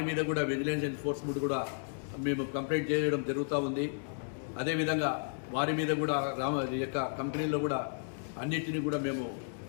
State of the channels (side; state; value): right; silent; digital silence